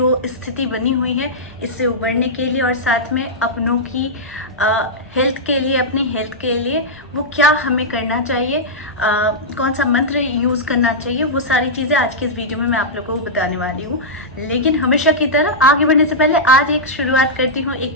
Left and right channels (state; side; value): normal; both; correlation -0.10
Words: स्थिति बनी हुई है इससे उबरने के लिए और साथ में अपनों की हेल्थ के लिए, अपनी हेल्थ के लिए वो क्या हमें करना चाहिए, कौन सा मंत्र यूज़ करना चाहिए, वो सारी चीज़ें आज की इस वीडियो में मैं आप लोगों को बताने वाली हूँ। लेकिन हमेशा की तरह आगे बढ़ने से पहले आज एक शुरुआत करती हूँ